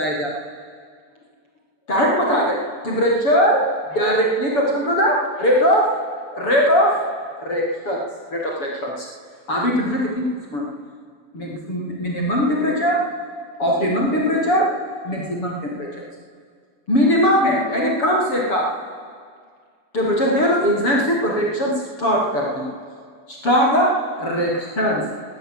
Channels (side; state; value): right; late; 7.0 ms